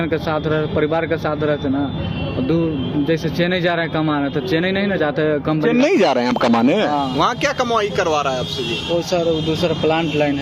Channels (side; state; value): both; identical; correlation 1.00